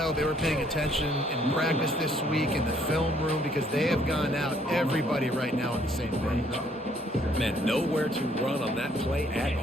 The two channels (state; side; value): normal; both; correlation 0.65